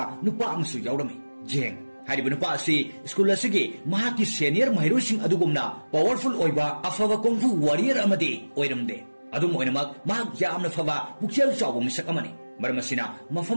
ꯅꯨꯄꯥ ꯑꯃꯁꯨ ꯌꯥꯎꯔꯝꯃꯤ ꯖꯦꯡ ꯍꯥꯏꯔꯤꯕ ꯅꯨꯄꯥ ꯑꯁꯤ ꯁ꯭ꯀꯨꯜ ꯑꯁꯤꯒꯤ ꯃꯍꯥꯛꯀꯤ ꯁꯦꯅꯤꯌꯔ ꯃꯍꯩꯔꯣꯏꯁꯤꯡ ꯑꯗꯨꯒꯨꯝꯅ ꯄꯥꯋꯔꯐꯨꯜ ꯑꯣꯏꯕ ꯑꯐꯕ ꯀꯣꯡꯐꯨ ꯋꯥꯔꯤꯌꯔ ꯑꯃꯗꯤ ꯑꯣꯏꯔꯝꯗꯦ ꯑꯗꯨꯝ ꯑꯣꯏꯅꯃꯛ ꯃꯍꯥꯛ ꯌꯥꯝꯅ ꯐꯕ ꯄꯨꯛꯆꯦꯜ ꯆꯥꯎꯕ ꯃꯤꯁꯛ ꯑꯃꯅꯤ ꯃꯔꯝ ꯑꯁꯤꯅ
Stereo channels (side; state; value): both; inverted; correlation -1.00